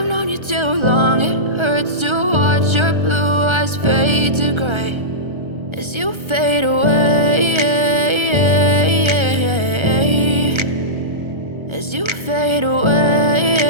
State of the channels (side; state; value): left; late; 1.3 ms